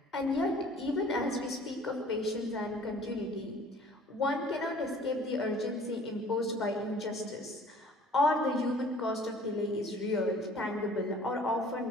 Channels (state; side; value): normal; both; correlation 0.51